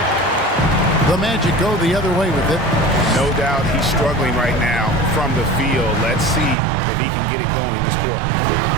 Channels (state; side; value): drops out; left; at 6.6 s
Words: The Magic go the other way with it. No doubt he's struggling right now from the field. Let's see if he can get it going this quarter.